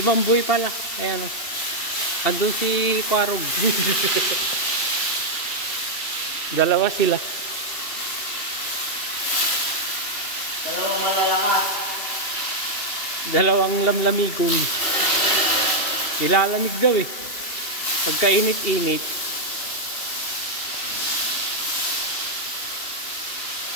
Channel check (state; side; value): late; right; 2.7 ms